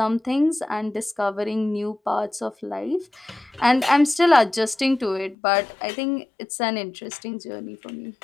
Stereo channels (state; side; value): drops out; right; at 5.4 s